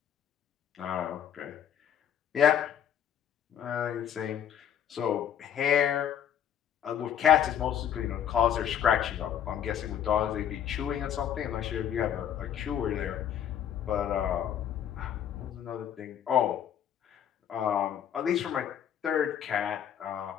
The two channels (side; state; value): right; quieter; 9.6 dB